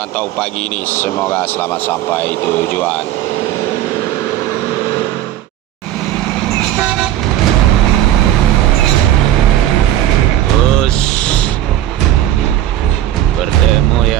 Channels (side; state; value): left; quieter; 12.6 dB